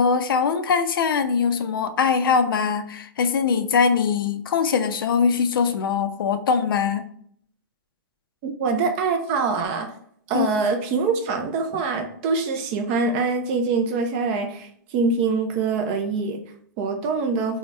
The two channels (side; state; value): both; normal; correlation -0.16